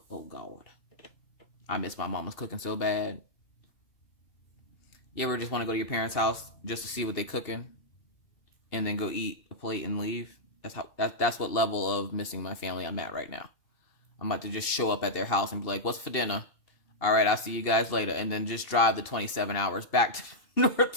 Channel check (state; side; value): late; right; 2.7 ms